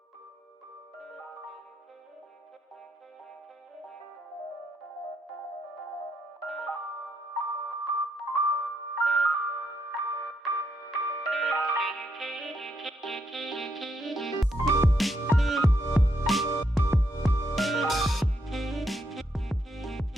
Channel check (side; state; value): both; normal; correlation 0.77